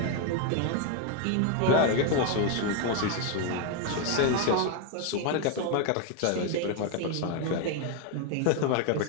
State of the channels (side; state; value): both; different; correlation 0.01